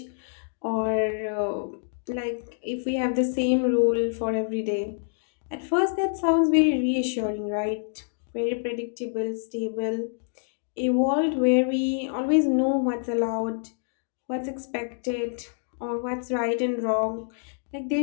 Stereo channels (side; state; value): right; silent; digital silence